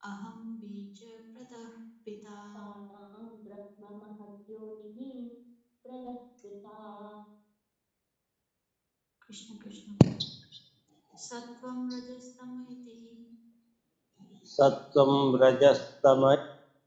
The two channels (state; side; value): identical; both; correlation 1.00